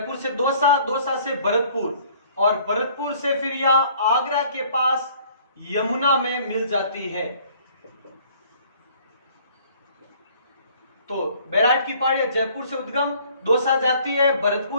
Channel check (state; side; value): inverted; both; correlation -0.57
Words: से दौसा, दौसा से भरतपुर, और भरतपुर से फिर यहां आगरा के पास यमुना में मिल जाती है। तो बैराट की पहाड़ियां जयपुर से उद्गम, दौसा जाती है,